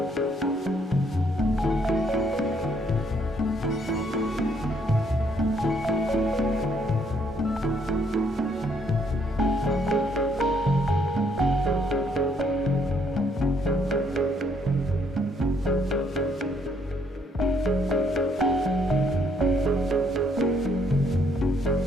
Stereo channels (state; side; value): normal; both; correlation 0.69